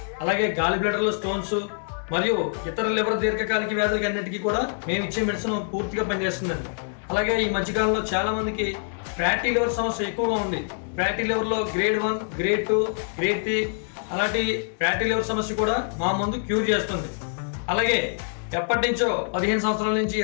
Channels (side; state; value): right; silent; 62 dB below the other